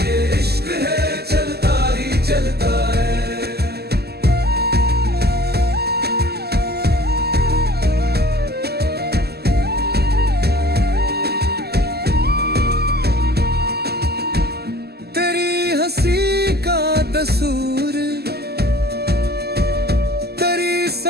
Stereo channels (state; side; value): late; left; 0.46 ms